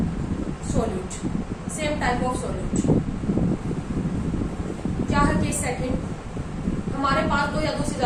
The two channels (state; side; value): identical; both; correlation 1.00